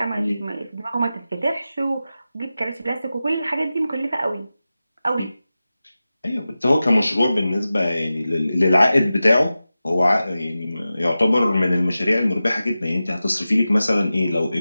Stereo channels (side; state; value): both; inverted; correlation -0.94